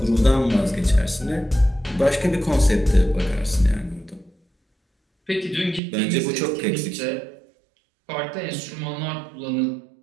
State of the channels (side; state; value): left; drops out; at 5.8 s